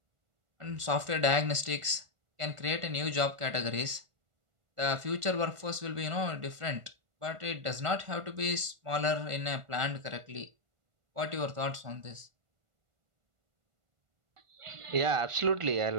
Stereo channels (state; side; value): late; left; 1.4 ms